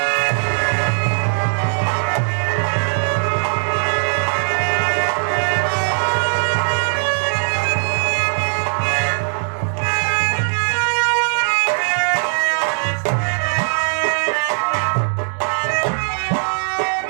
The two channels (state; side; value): silent; left; digital silence